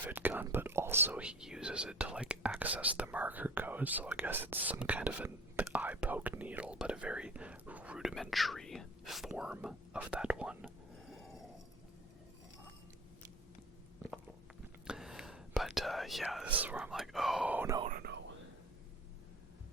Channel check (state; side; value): normal; both; correlation 0.42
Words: gun, but also he uses it to like access the marker code, so I guess it's some kind of an eye poke needle, but a very rudimentary form of that one. But yeah, this is where I'm like, oh no.